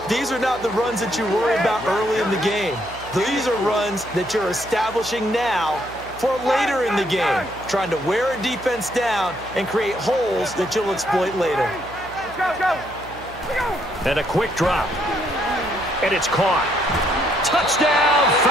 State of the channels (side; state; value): right; noise; hum, 18 dB below the sound